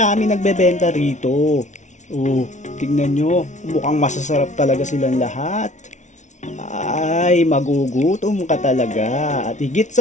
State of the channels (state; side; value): late; right; 0.35 ms